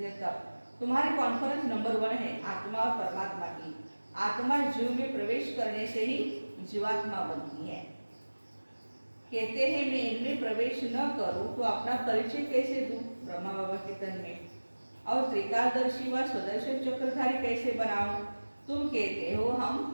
तब। तुम्हारी कॉन्फ्रेंस नंबर 1 है आत्मा और परमात्मा की। आत्मा जीव में प्रवेश करने से ही जीवात्मा बनती है। कहते हैं मैं इनमें प्रवेश न करूं तो अपना परिचय कैसे दूं ब्रह्मा बाबा के तन में, और त्रिकालदर्शी व स्वदर्शन चक्रधारी कैसे बनाऊं। तुम कहते हो हम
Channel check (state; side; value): inverted; both; correlation -1.00